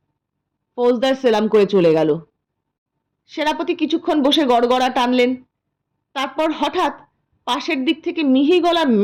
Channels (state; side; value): identical; both; correlation 1.00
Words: ফৌজদার সেলাম করে চলে গেল। সেনাপতি কিছুক্ষণ বসে গড়গড়া টানলেন। তারপর হঠাৎ পাশের দিক থেকে মিহি গলার